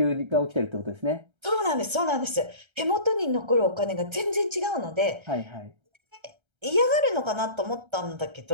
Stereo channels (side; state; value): left; late; 1.3 ms